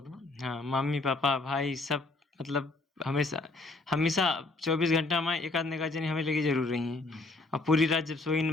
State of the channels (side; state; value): right; quieter; 3.1 dB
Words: ना। हाँ, मम्मी पापा भाई सब मतलब हमेशा हमेशा 24 घंटा में एक आध निगाह जनी हमें लगी जरूर रही हैं। और पूरी रात जब सोई न